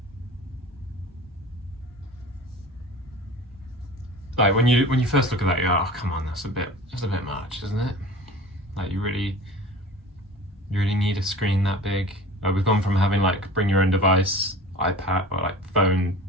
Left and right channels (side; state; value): both; normal; correlation 0.39